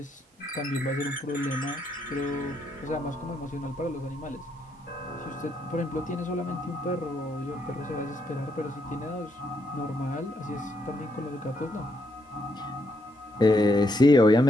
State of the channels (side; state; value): both; normal; correlation 0.76